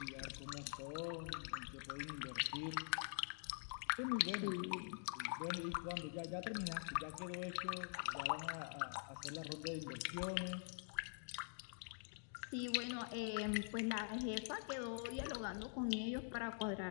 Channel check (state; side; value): silent; right; digital silence